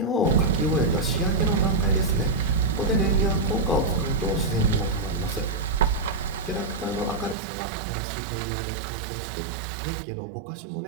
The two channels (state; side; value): drops out; left; at 7.4 s